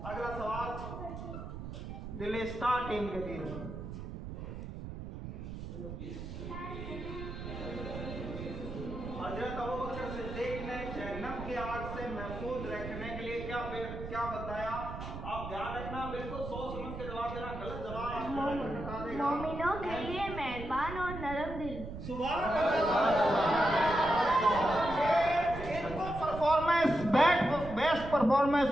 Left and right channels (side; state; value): right; noise; rumble, 9 dB below the sound